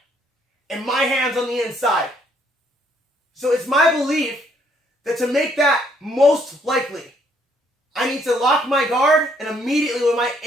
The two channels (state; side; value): normal; both; correlation 0.68